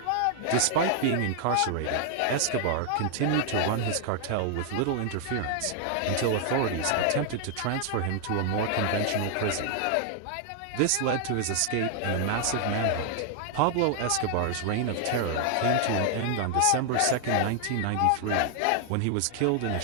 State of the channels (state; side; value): different; both; correlation 0.00